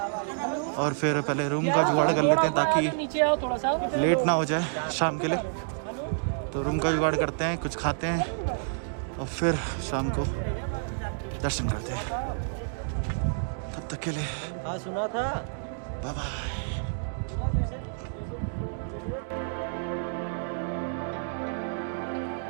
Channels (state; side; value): silent; left; digital silence